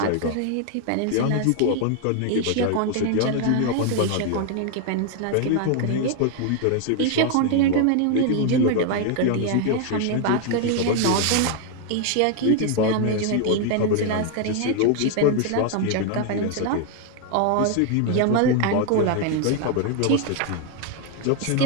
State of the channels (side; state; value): both; different; correlation 0.01